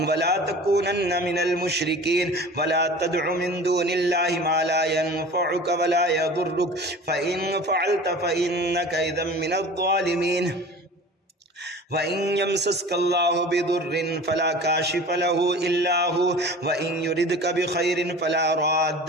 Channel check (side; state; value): both; normal; correlation 0.40